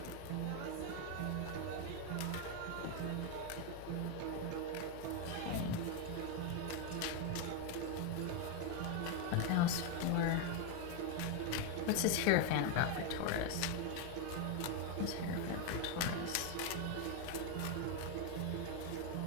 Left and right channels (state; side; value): different; both; correlation 0.01